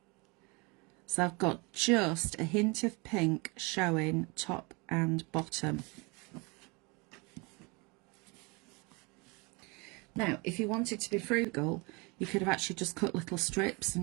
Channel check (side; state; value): left; quieter; 28.6 dB